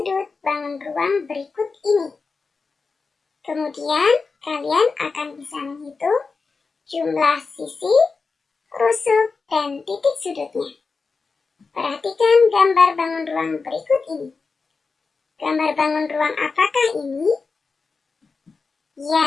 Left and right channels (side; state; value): right; quieter; 4.5 dB